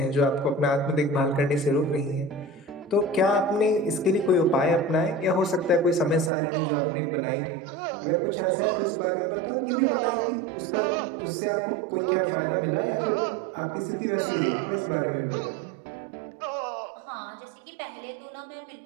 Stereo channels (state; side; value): drops out; left; at 6.3 s